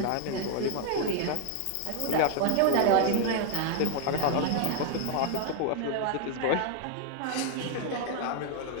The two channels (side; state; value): both; different; correlation 0.00